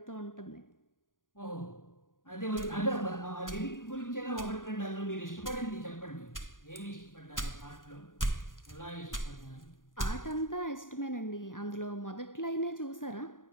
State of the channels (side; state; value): right; late; 0.89 ms